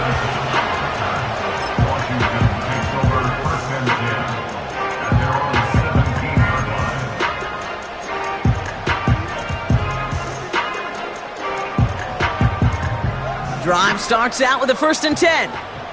Drive starts out with a first and 10.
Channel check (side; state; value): both; identical; correlation 1.00